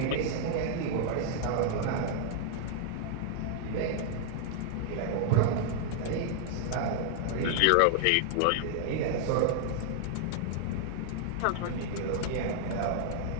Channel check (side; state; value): both; different; correlation -0.01